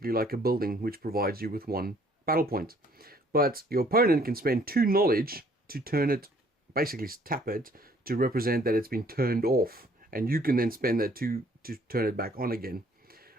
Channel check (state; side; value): normal; both; correlation 0.60